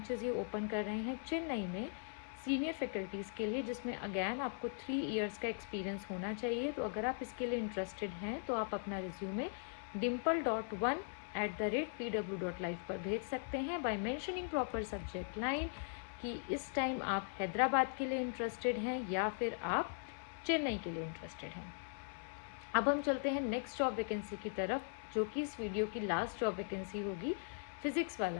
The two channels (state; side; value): silent; right; 51 dB below the other